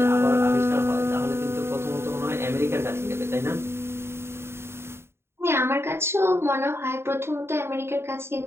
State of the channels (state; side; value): late; left; 0.12 ms